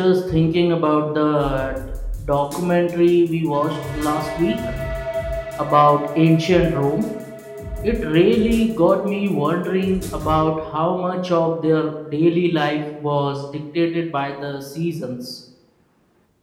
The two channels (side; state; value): both; identical; correlation 1.00